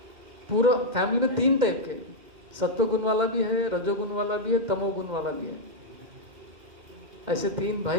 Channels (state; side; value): late; left; 2.0 ms